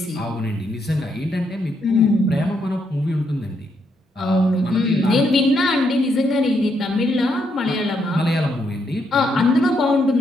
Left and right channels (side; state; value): both; normal; correlation 0.77